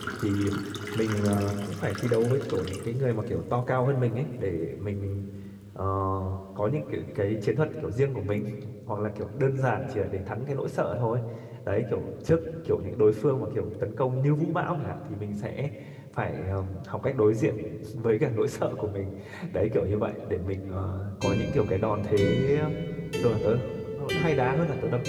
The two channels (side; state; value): both; identical; correlation 1.00